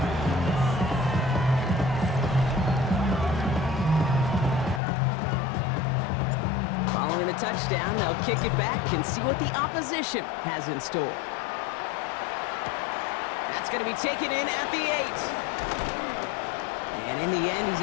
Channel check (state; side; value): drops out; right; at 4.8 s